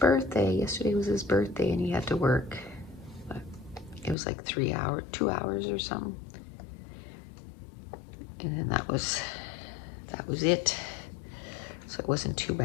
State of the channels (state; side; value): drops out; right; at 4.2 s